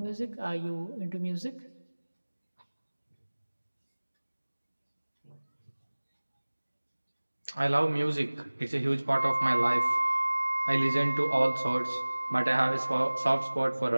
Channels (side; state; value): both; inverted; correlation -1.00